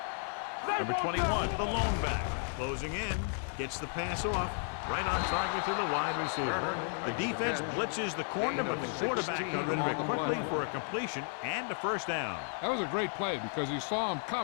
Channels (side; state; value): right; silent; 55 dB below the other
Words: Number 21, the lone back. Closing in, gets the pass off. Right on target to the wide receiver. The defense blitzes the corner, but the quarterback got rid of it quickly for a completion and a first down. That was a great play because he saw him